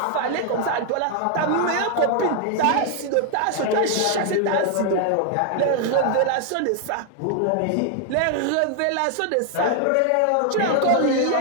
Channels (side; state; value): both; different; correlation 0.00